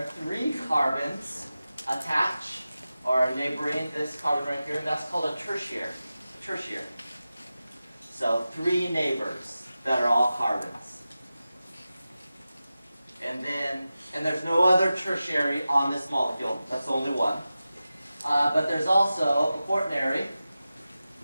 3 carbons attach or are neighboring this carbon right here, and that's called a tertiary. So 3 neighbors that are all carbons. And there's no other tertiary on this molecule. That's only one. But there's also a quaternary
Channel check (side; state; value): both; inverted; correlation -0.94